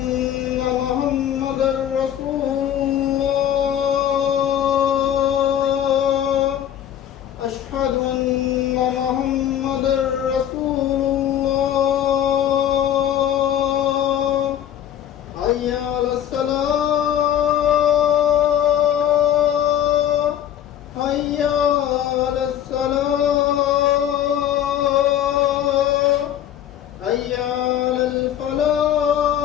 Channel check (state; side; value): quieter; right; 10.5 dB